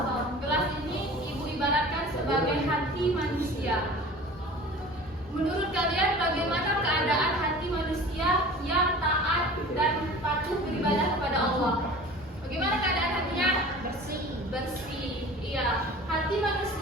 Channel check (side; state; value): both; normal; correlation 0.41